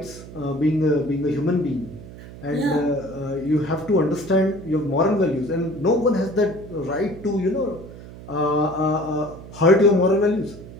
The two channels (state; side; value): noise; right; hum, 16 dB below the sound